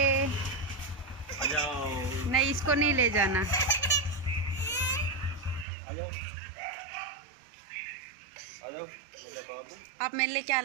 आ जाओ। नहीं, इसको नहीं ले जाना। आ जाओ। आ जाओ मेरे बाबू। आप मेरे लिए क्या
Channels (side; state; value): left; drops out; at 5.7 s